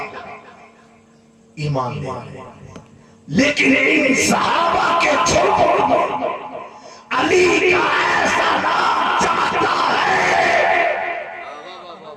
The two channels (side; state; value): both; identical; correlation 1.00